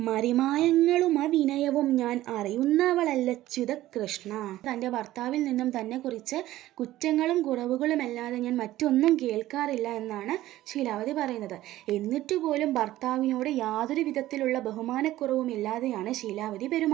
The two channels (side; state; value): left; quieter; 15.2 dB